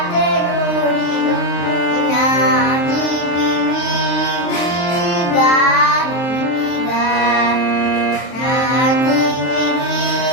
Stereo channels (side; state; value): right; late; 23 ms